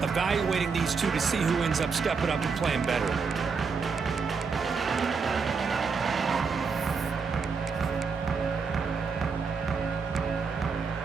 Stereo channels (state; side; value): quieter; left; 5.2 dB